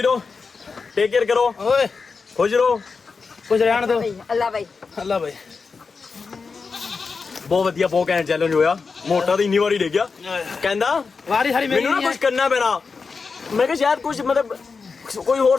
ਟੇਕ ਕੇਅਰ ਕਰੋ ਓਏ ਖੁਸ਼ ਰਹੋ ਕੁਝ ਰਹਿਣ ਦੋ ਅੱਲਾ ਭਾਈ ਅੱਲਾ ਭਾਈ ਬਹੁਤ ਵਧੀਆ ਬਹੁਤ ਘੈਂਟ ਚੈਲੰਜ ਹੋਇਆ ਮੋਟਾ ਤਾਂ ਇੰਨੀ ਵਾਰੀ ਡੇ ਗਿਆ ਕਹਿੰਦਾ ਵਾਰੀ ਸਾਰੀ ਮੇਰੀ ਮੈਨੂੰ ਨਾ ਕੁਝ ਕਰਨਾ ਪੈਣਾ ਮੈਂ ਕਿਹਾ ਸ਼ਾਇਦ ਕੁਝ ਮਤਲਬ ਕੋਈ ਹੋਰ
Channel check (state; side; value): quieter; right; 4.8 dB